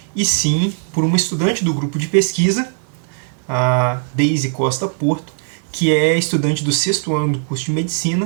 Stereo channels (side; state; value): left; silent; digital silence